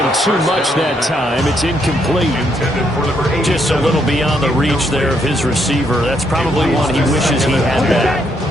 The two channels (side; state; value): both; normal; correlation 0.75